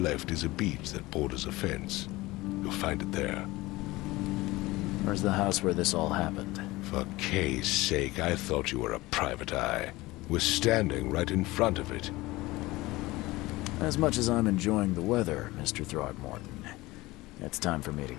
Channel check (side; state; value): right; quieter; 20.0 dB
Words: is a beach that borders a fence. You'll find it there. Where's the house where this all happened? For Kay's sake, I thought you were a private eye. We're standing right in front of it. As much as I'm enjoying the weather, Mr. Throgmorton, it's time for me to